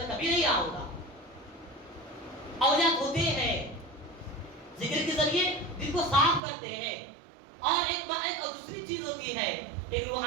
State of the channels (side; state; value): left; drops out; at 6.4 s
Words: کبھی نہیں آؤں گا۔ اولیاء ہوتے ہیں ذکر کے ذریعے دل کو صاف کرتے ہیں، اور ایک دوسری چیز ہوتی ہے، ایک